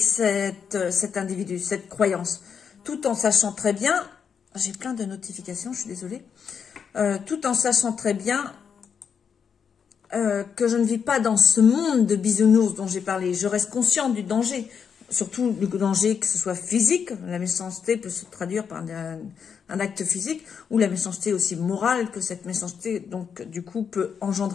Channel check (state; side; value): quieter; right; 6.9 dB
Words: cet individu, cette croyance, tout en sachant très bien, j'ai plein de notifications, je suis désolée, tout en sachant très bien que je ne vis pas dans ce monde de bisounours dont j'ai parlé. Je reste consciente du danger, surtout le danger que ce soit physique, la méchanceté peut se traduire par un acte physique, ou la méchanceté aussi morale que cette méchanceté, donc, du coup, peut